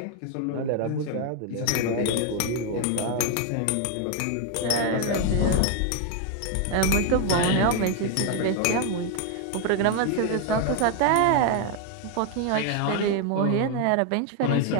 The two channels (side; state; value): both; different; correlation 0.01